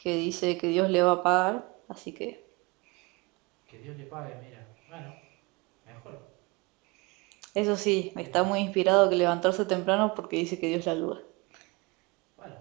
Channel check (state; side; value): quieter; left; 26.1 dB